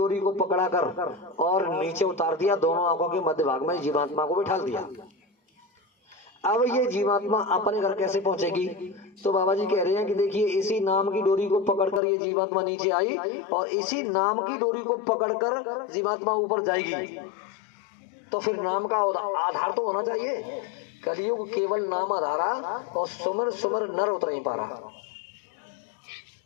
को पकड़ा कर और नीचे उतार दिया, दोनों आंखों के मध्य भाग में जीवात्मा को बिठा दिया। अब ये जीवात्मा अपने घर कैसे पहुंचेगी? तो बाबा जी कह रहे हैं कि देखिए इसी नाम की डोरी को पकड़कर ये जीवात्मा नीचे आई और इसी नाम की डोरी को पकड़कर जीवात्मा ऊपर जाएगी। तो फिर नाम का आधार तो होना चाहिए। कलयुग केवल नाम आधारा और सुमर सुमर नर उतर नहीं पा रहा।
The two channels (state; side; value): drops out; right; at 12.0 s